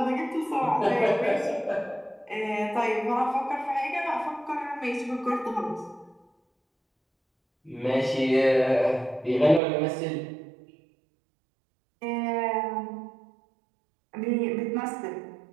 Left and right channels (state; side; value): drops out; left; at 9.6 s